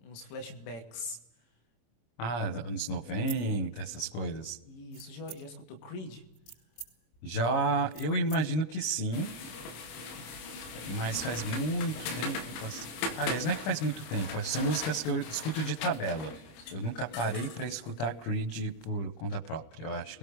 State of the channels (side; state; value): right; late; 26 ms